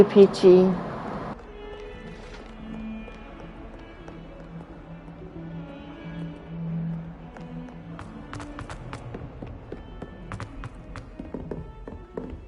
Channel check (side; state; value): both; identical; correlation 1.00